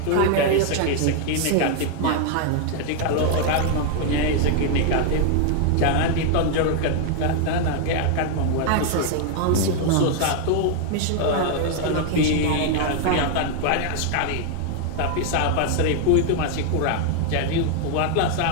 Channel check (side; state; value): both; different; correlation 0.00